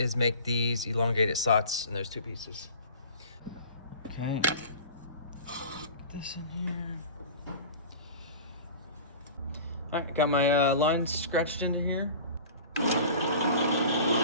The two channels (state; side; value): inverted; both; correlation -0.39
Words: make these elongated slots in those 2 pieces. Okay. Put this in here. Alright, got my lines scratched into here.